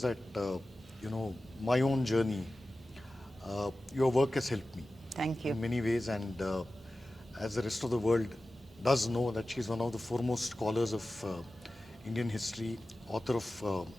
that, my own journey, your work has helped me Thank you. in many ways, and as the rest of the world does know that she's one of the foremost scholars of Indian history, author of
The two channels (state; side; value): normal; both; correlation 0.95